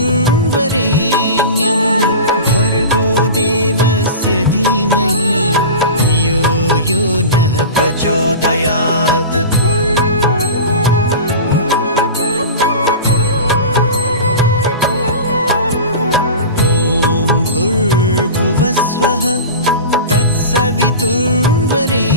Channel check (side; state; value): both; inverted; correlation -0.31